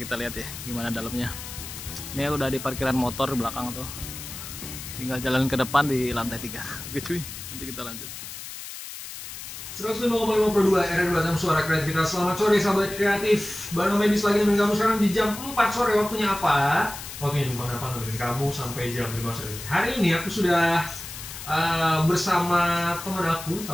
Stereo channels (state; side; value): noise; left; hiss, 11 dB below the sound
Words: lihat ya gimana dalamnya. Ini aku udah di parkiran motor di belakang tuh. Tinggal jalan ke depan di lantai 3. Oke cuy, nanti kita lanjut. 105,5 per 2 RRI Batam, suara kreativitas. Selamat sore sahabat kreatif. Baru medis lagi nemenin kamu sekarang di jam 4 sore. Waktunya apa? Waktunya numpang apa nemenin kamu sampai jam 5 sore. Hari ini aku sudah bersama teman aku,